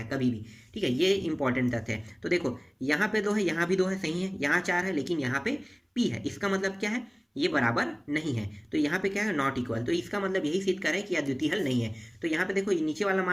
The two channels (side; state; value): both; identical; correlation 1.00